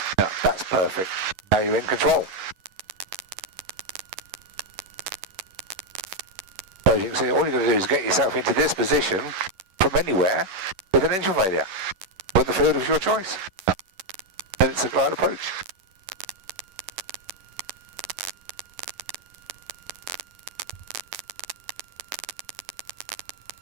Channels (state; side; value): late; left; 11 ms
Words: Yeah, that's perfect. Now you're in control. So as you can see, all you're going to do is get yourself into this position from anywhere with an engine failure, with the field of your choice. Then it's a glide approach.